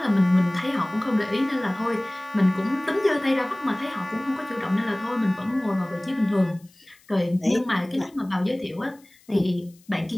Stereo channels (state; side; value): noise; left; hiss, 29 dB below the sound